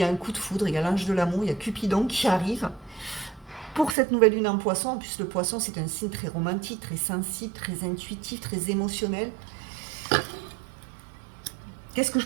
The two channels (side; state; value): left; drops out; at 4.0 s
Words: a un coup de foudre, il y a l'ange de l'amour, il y a Cupidon qui arrive. Pour cette nouvelle lune en poisson, en plus le poisson c'est un signe très romantique, très sensible, très intuitif, très émotionnel. Qu'est-ce que je